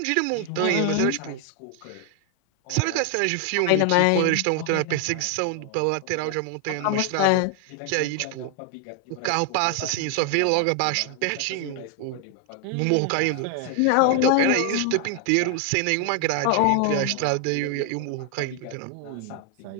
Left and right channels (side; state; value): both; different; correlation 0.00